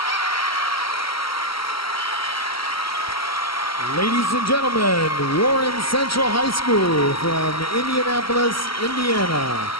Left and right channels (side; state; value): right; late; 0.75 ms